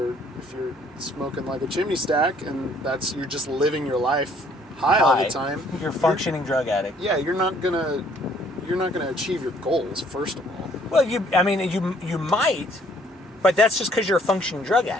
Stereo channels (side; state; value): both; normal; correlation 0.62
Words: smoking like a chimney stack, and you're just living your life high all the time. You're a functioning drug addict. Yeah, you're not gonna achieve your goals. First of all. Well, you might, but that's just because you're a functioning drug